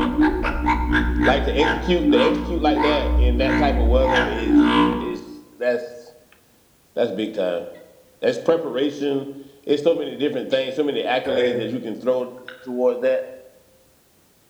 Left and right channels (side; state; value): both; identical; correlation 1.00